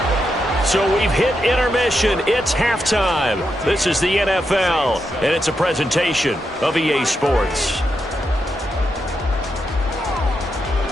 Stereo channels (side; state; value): both; normal; correlation 0.84